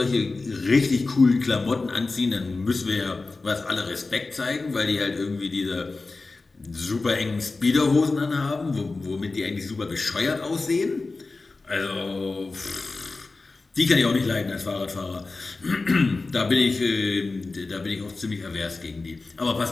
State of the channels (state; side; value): quieter; right; 3.6 dB